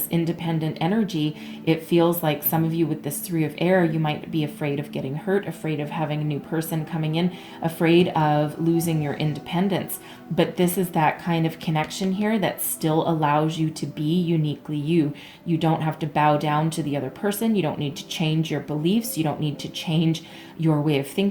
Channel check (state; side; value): identical; both; correlation 1.00